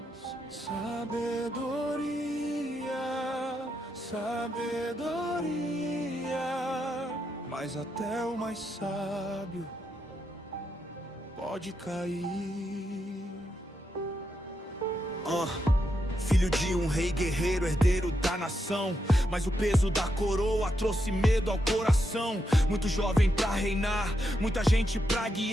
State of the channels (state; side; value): normal; both; correlation 0.83